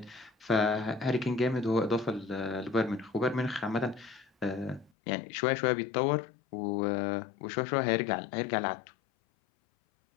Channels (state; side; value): drops out; right; at 4.9 s